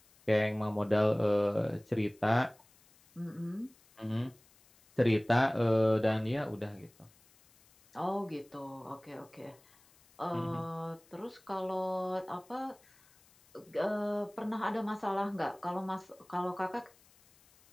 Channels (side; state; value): left; noise; hiss, 29 dB below the sound